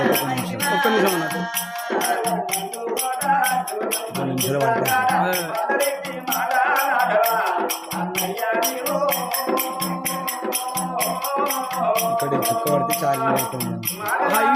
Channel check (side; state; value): both; identical; correlation 1.00